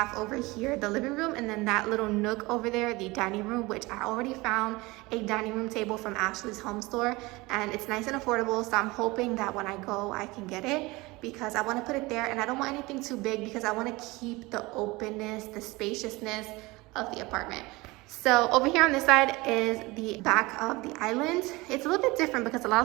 over here the living room, and then that little nook over there the dining room, which I already found a dining room table from Ashley's home store, and it's nice and affordable. So I'm hoping that when I go I can get it, because I want to put it there, and I don't want anything too big because I want to keep the openness, the spaciousness of the apartment. So over here on this side is the back of the island. It's a little bit different because a lot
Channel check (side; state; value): left; quieter; 22.5 dB